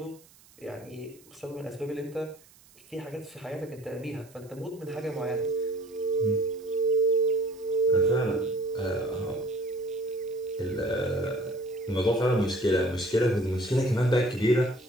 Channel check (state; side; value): noise; right; hiss, 26 dB below the sound